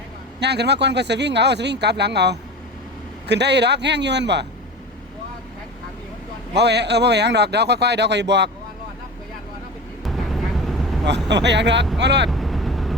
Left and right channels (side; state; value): both; normal; correlation 0.31